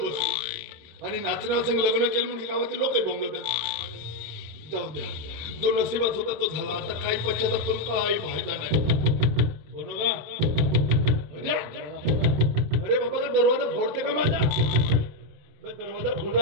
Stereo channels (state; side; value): late; left; 27 ms